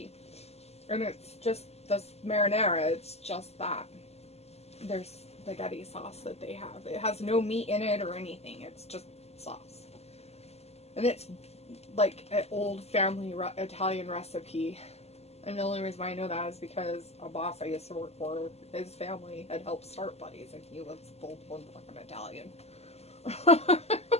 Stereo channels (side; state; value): right; late; 0.30 ms